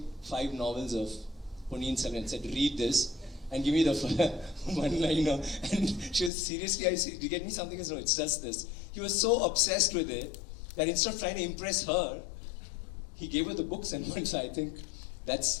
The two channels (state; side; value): drops out; right; at 6.3 s